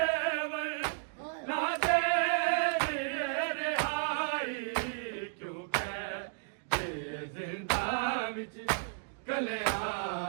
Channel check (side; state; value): left; silent; digital silence